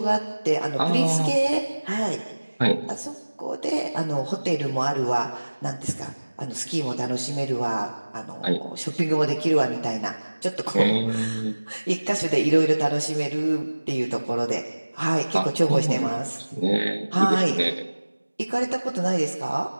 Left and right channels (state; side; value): inverted; both; correlation -1.00